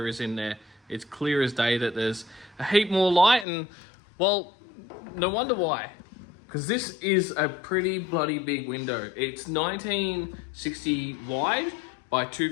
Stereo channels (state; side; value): drops out; right; at 3.5 s